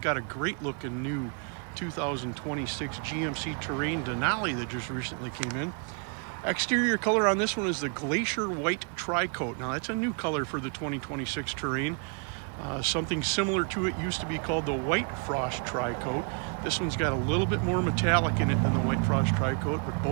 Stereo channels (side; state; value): left; quieter; 39.5 dB